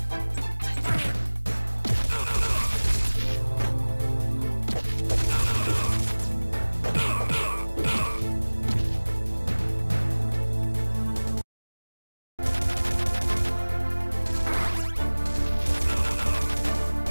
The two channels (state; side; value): inverted; both; correlation -1.00